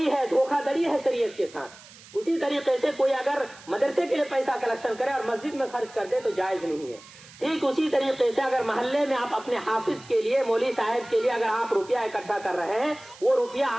ہے، دھوکہ دڑی ہے شریعت کے ساتھ۔ اسی طریقے سے کوئی اگر مدرسے کے لیے پیسہ کلیکشن کرے اور مسجد میں خرچ کر دے تو جائز نہیں ہے۔ ٹھیک اسی طریقے سے اگر محلے میں آپ اپنے حافظ کے لیے، مولوی صاحب کے لیے اگر آپ روپیہ اکٹھا کر رہے ہیں، وہ روپیہ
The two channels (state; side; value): noise; right; hiss, 21 dB below the sound